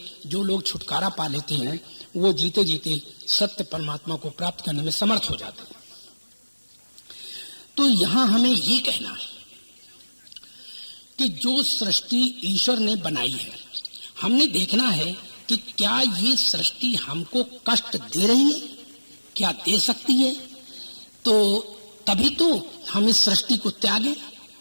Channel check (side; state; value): both; inverted; correlation -1.00